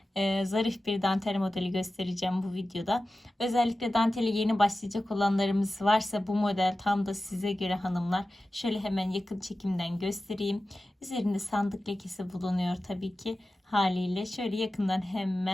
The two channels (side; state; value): both; normal; correlation 0.94